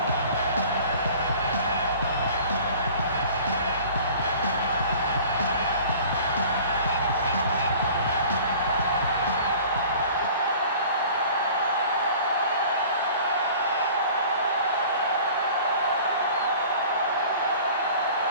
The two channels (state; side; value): inverted; both; correlation -0.46